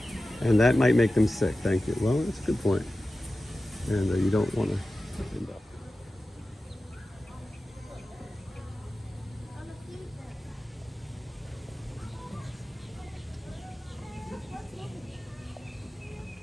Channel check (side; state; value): both; normal; correlation 0.94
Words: And that might make them sick. Thank you. Well, that's a good point. And you don't want to end up.